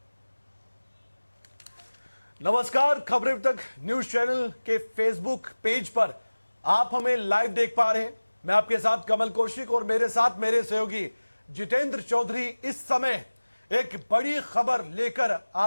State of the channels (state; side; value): inverted; both; correlation -1.00